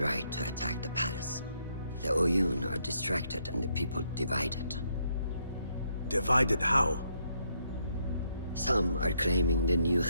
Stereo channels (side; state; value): both; inverted; correlation -0.74